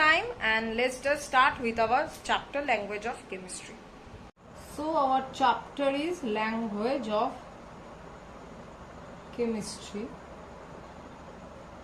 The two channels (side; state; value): both; identical; correlation 1.00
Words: and let's just start with our chapter language of chemistry. So our chapter is language of chemistry.